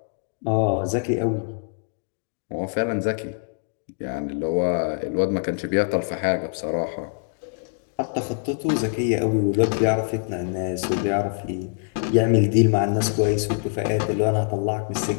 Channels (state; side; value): silent; right; digital silence